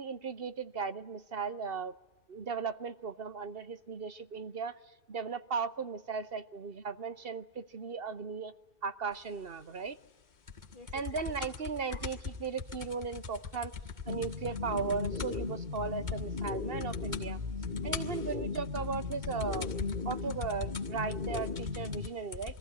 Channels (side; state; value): left; late; 2.2 ms